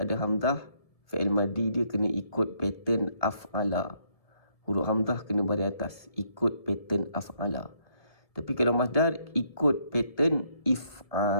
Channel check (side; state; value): right; late; 1.7 ms